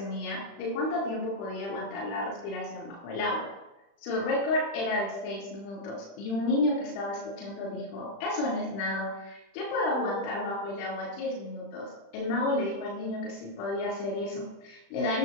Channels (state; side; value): late; right; 35 ms